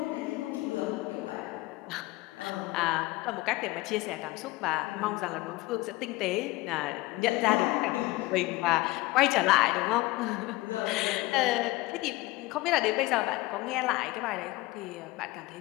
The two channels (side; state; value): right; quieter; 20.1 dB